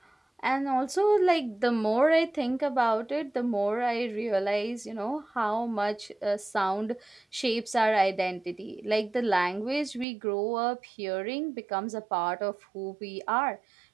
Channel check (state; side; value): drops out; left; at 10.1 s